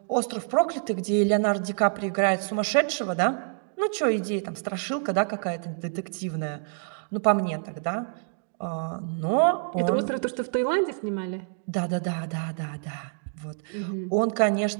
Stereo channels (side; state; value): left; silent; digital silence